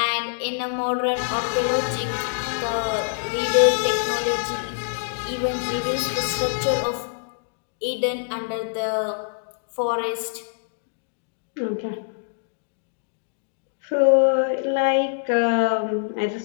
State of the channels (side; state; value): right; silent; digital silence